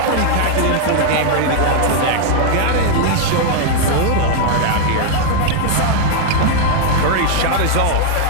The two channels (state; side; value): different; both; correlation -0.01